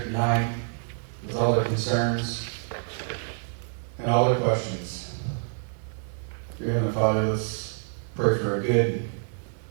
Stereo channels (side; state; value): left; silent; 60 dB below the other